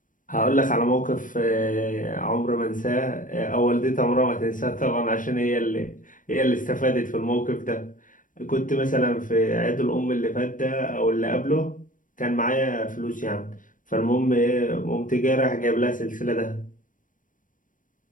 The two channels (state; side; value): late; right; 0.38 ms